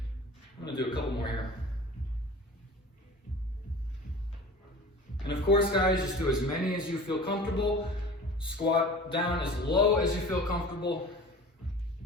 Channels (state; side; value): normal; both; correlation 0.40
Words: I'm going to do a couple more here. And of course, guys, just do as many as you feel comfortable. Squat down as low as you feel comfortable.